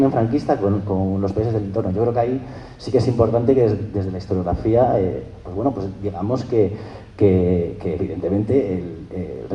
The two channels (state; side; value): identical; both; correlation 1.00